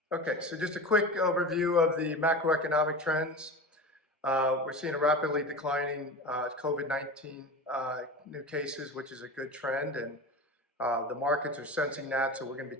Okay, so just a quick overview of the macroeconomic trends. We're seeing a rapidly declining COVID-19 new cases, which is a good trend, and the markets are sensing that. So we're going to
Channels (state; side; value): normal; both; correlation 0.30